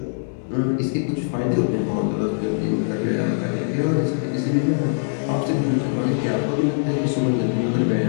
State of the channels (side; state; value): right; silent; digital silence